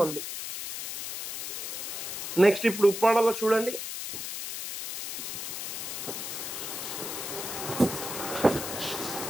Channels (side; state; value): left; noise; hiss, 5 dB below the sound